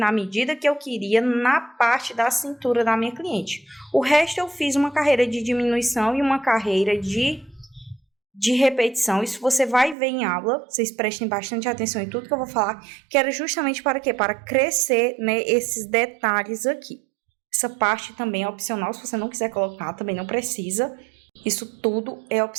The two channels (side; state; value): left; drops out; at 10.0 s